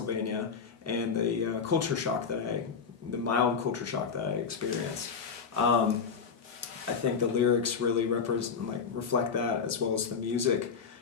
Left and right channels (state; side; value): quieter; right; 5.9 dB